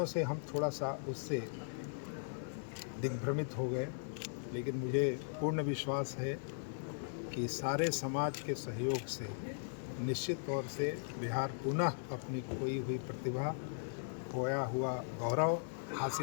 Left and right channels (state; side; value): silent; right; digital silence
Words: से हम थोड़ा सा उससे दिग्भ्रमित हो गए। लेकिन मुझे पूर्ण विश्वास है कि सारे समाज के सहयोग से निश्चित तौर से बिहार पुनः अपनी खोई हुई प्रतिभा, खोया हुआ गौरव